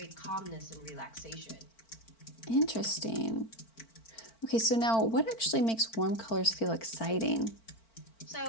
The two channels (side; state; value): right; late; 4.4 ms